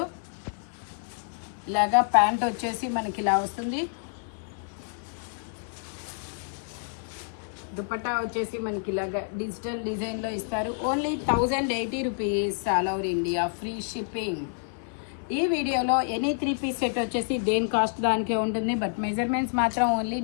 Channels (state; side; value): silent; right; digital silence